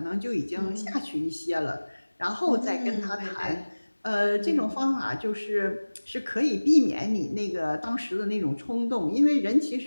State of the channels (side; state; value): both; inverted; correlation -1.00